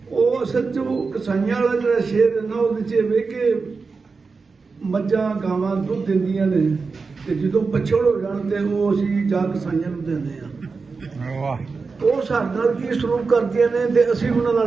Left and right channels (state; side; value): quieter; left; 4.5 dB